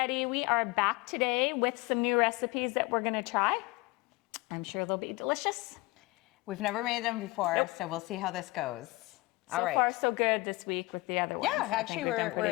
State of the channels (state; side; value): quieter; right; 22.3 dB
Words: we are back today with some new recipes that we're gonna try. I'm sure they'll be delicious. We've never made them before, Nope. so we'll see how this goes. So far so good this week with the other ones. Yeah, actually we're